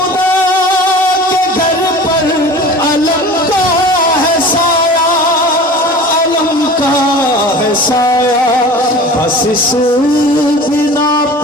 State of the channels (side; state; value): both; normal; correlation 0.39